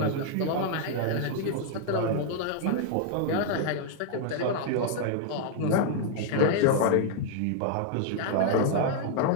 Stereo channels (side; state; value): both; different; correlation 0.00